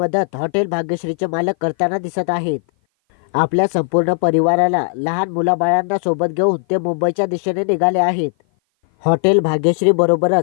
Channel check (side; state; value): right; silent; 56 dB below the other